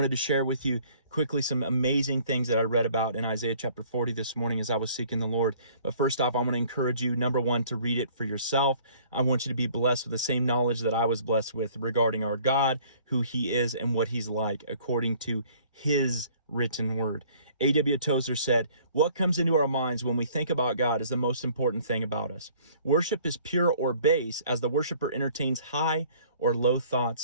to share with you quickly some amazing things that I read about in Isaiah chapter 40 this morning as I was seeking the Lord. But first off, I want to encourage you, number one, to read it for yourself. I want you to be blessed with the same knowledge that I was blessed with regarding our God, who he is, and what he's like, according to his written word. A.W. Tozer said, "What comes into our minds when we think about God is the most important thing about us. Worship is pure or base as the worshiper entertains high or low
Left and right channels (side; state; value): both; inverted; correlation -0.56